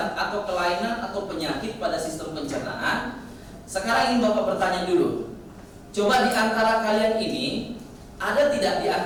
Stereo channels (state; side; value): identical; both; correlation 1.00